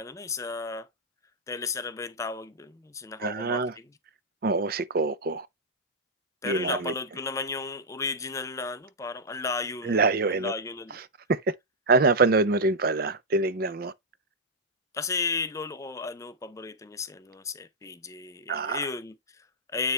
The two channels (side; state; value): both; normal; correlation -0.06